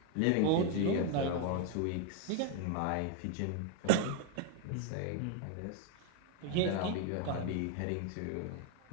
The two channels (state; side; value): different; both; correlation 0.01